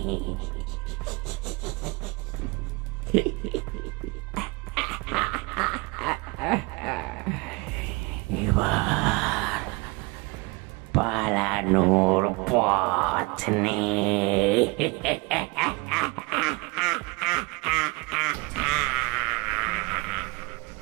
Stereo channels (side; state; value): left; quieter; 25.9 dB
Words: এবার পালানোর পথ নেই।